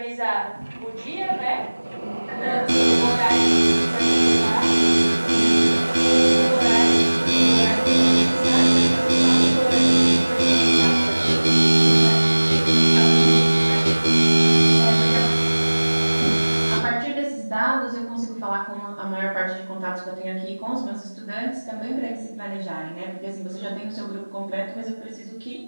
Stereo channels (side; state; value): both; inverted; correlation -1.00